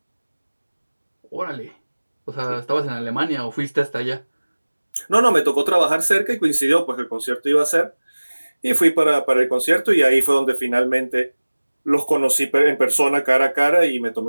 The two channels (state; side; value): inverted; both; correlation -1.00